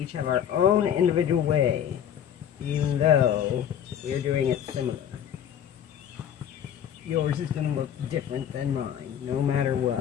have our own individual way, even though we are doing it similar. Yours is going to look different than mine, no matter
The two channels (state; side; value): quieter; right; 9.3 dB